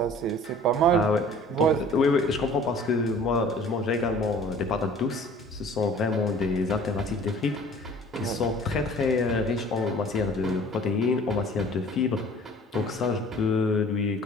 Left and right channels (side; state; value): both; normal; correlation 0.49